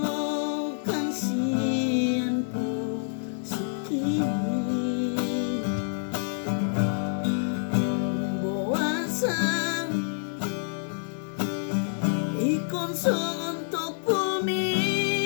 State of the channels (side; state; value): right; silent; digital silence